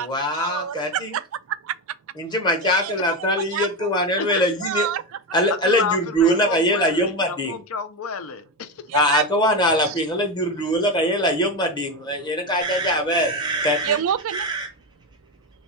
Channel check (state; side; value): normal; both; correlation 0.14